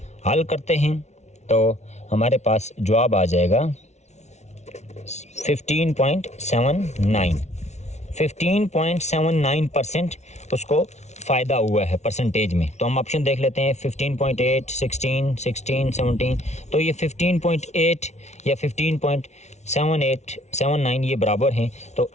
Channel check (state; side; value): late; right; 0.32 ms